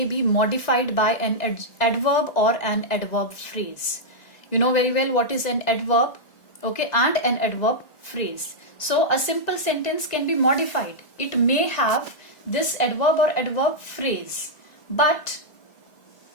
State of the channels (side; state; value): right; late; 1.9 ms